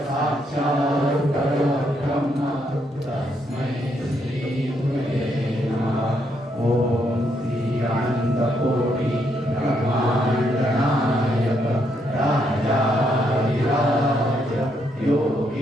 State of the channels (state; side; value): normal; both; correlation 0.76